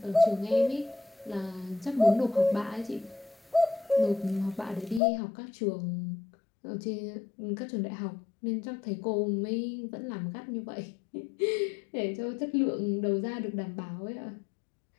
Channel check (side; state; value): right; drops out; at 5.0 s